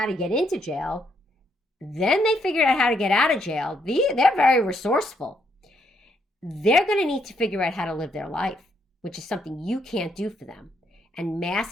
to get into jail. Then they figured out how to get out of jail. They're very resourceful. They're going to need to figure out how to live their life, which is something you can't do for them. And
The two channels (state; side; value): normal; both; correlation 0.74